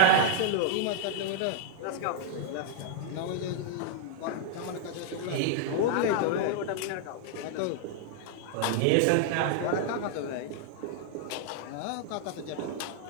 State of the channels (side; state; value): both; different; correlation 0.00